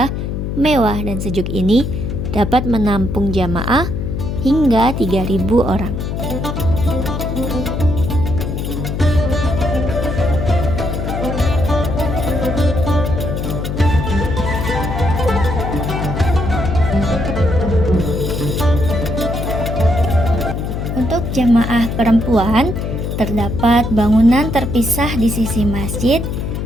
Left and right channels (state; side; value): noise; left; hum, 3 dB below the sound